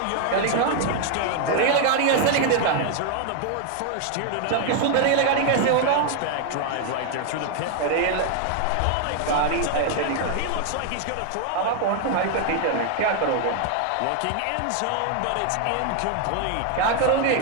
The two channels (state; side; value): different; both; correlation 0.00